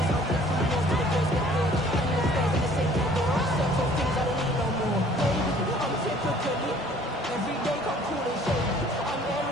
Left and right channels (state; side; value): normal; both; correlation 0.55